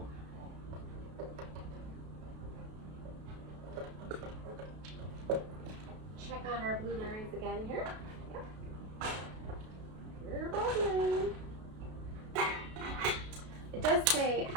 Check on our blueberries again here. Yep. You're bubbling. It does say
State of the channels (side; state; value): left; late; 32 ms